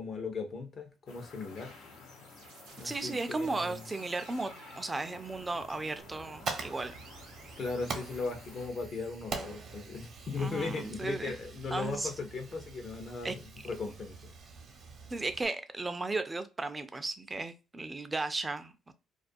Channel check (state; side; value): normal; both; correlation 0.83